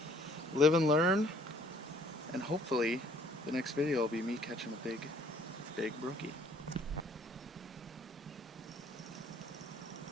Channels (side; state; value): both; normal; correlation 0.60